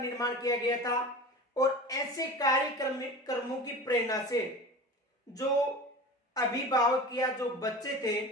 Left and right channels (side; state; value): both; normal; correlation 0.34